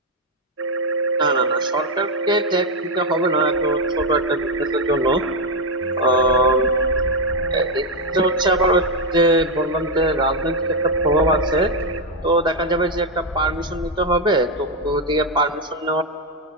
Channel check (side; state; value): both; normal; correlation 0.03